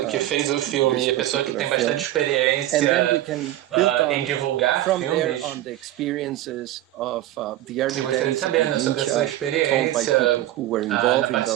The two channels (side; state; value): left; quieter; 14.4 dB